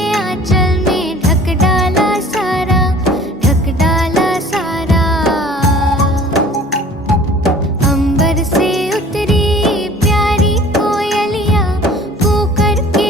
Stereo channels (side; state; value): both; normal; correlation 0.48